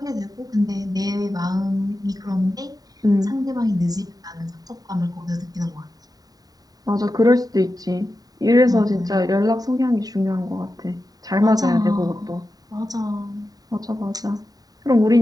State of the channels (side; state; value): left; late; 0.18 ms